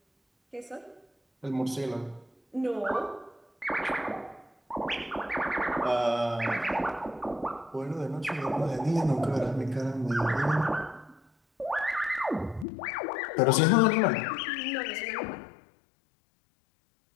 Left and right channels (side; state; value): right; drops out; at 12.7 s